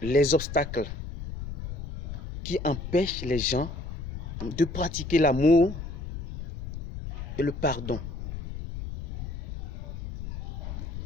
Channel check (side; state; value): left; noise; rumble, 8 dB below the sound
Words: les obstacles qui empêchent les gens de pratiquer l'amour et le pardon?